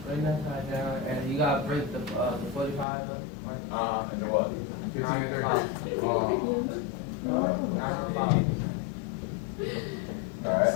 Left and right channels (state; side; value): drops out; right; at 2.9 s